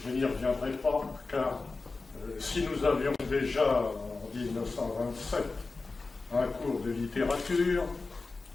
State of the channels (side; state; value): right; quieter; 3.8 dB